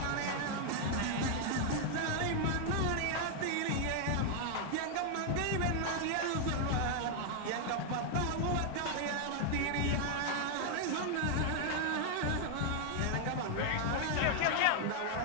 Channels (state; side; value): different; both; correlation 0.00